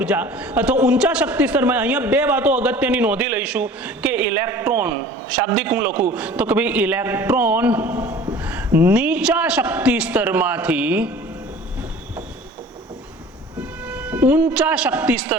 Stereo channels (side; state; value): both; normal; correlation 0.45